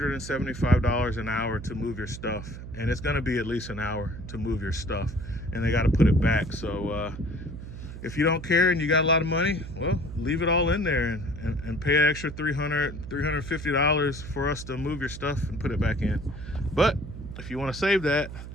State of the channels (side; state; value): right; noise; hum, 11 dB below the sound